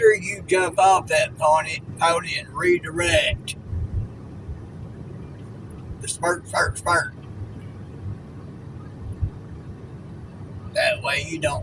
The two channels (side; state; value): both; identical; correlation 1.00